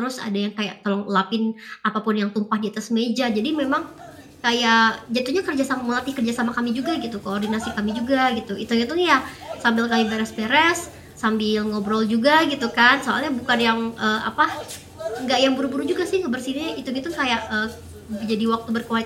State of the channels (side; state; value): both; identical; correlation 1.00